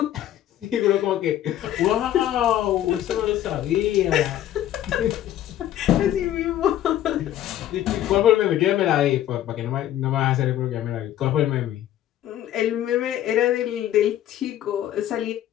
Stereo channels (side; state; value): right; quieter; 12.2 dB